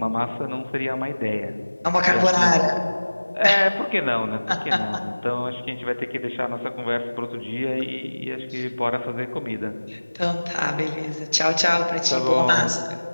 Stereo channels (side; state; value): both; inverted; correlation -1.00